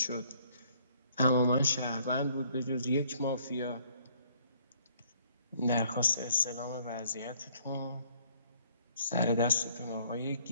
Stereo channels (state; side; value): inverted; both; correlation -0.62